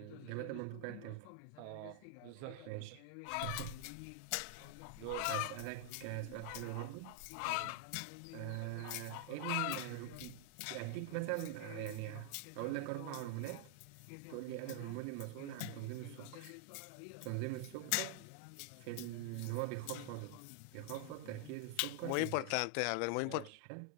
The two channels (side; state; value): both; different; correlation 0.00